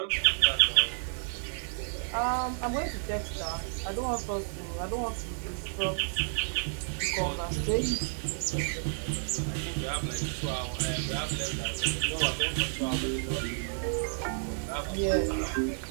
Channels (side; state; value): left; silent; digital silence